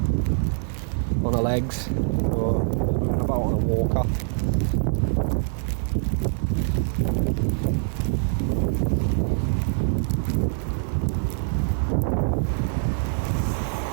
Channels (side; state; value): left; silent; digital silence